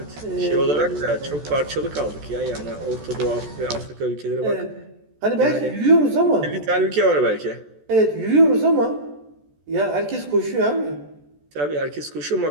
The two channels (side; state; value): left; late; 14 ms